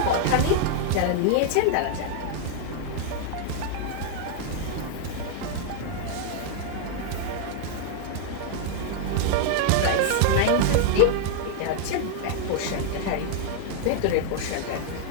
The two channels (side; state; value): both; different; correlation 0.00